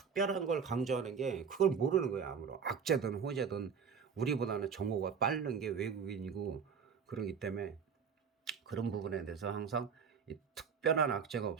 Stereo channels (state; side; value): quieter; left; 6.5 dB